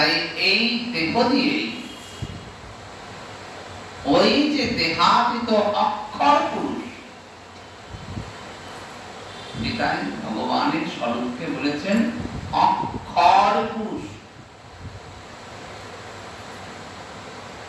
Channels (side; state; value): both; identical; correlation 1.00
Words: এই দেহ দিয়ে ওই যে দেহাতীত অক্ষর পুরুষ, গীতায় ভগবানের স্বরূপকে বলেছেন অক্ষর পুরুষ।